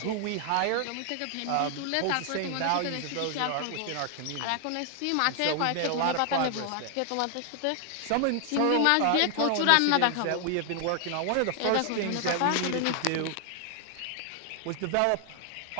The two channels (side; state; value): both; different; correlation 0.00